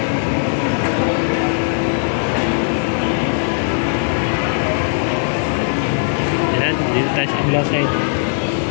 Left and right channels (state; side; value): silent; right; digital silence